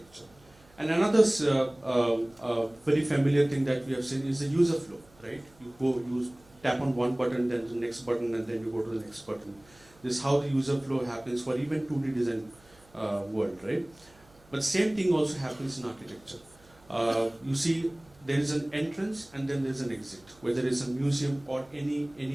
And another very familiar thing that we have seen is the user flow, right? You tap on one button, then the next button, and then you go to the next button. This is how the user flow happens for even 2D design world, right? But same thing also happens in architecture. You see, there is an entrance and then there is an exit. Whether it's a museum or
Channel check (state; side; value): noise; right; hum, 28 dB below the sound